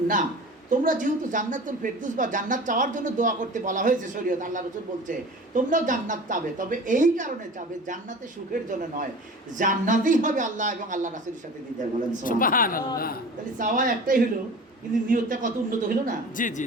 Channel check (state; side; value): normal; both; correlation 0.38